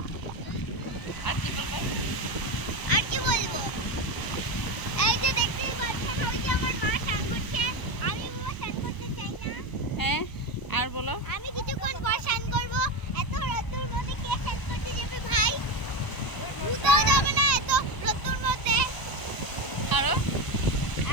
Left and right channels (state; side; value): late; right; 1.0 ms